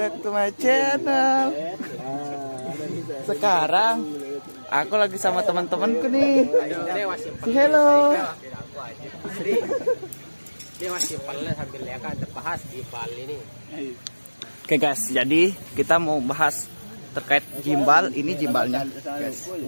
to my channel. Sekarang aku lagi sama teman-temanku nih. Hello. Dia masih pelan sambil ya kan bahas di Bali ini. Oke guys, jadi kita mau bahas terkait gimbal. Ini gimbalnya guys.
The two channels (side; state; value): both; inverted; correlation -1.00